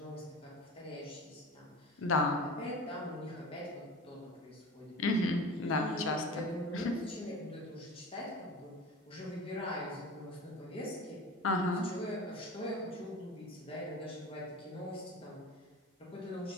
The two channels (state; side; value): normal; both; correlation 0.34